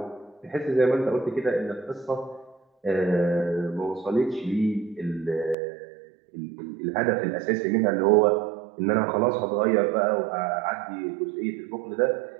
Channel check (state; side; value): drops out; left; at 5.6 s